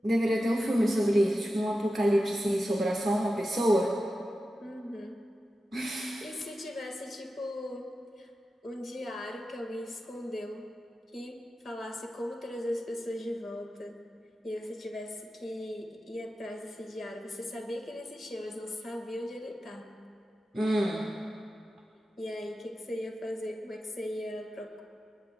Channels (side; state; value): both; normal; correlation 0.92